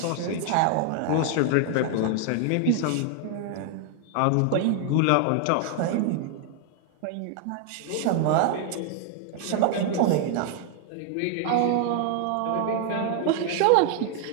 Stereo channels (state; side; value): different; both; correlation 0.00